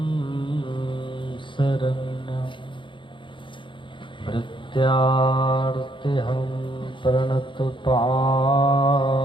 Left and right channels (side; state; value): right; late; 0.24 ms